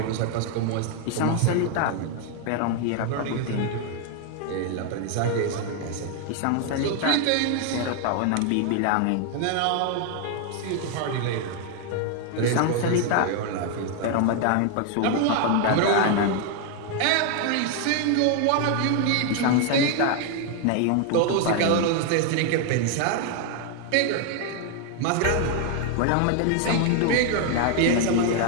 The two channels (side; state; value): both; different; correlation 0.00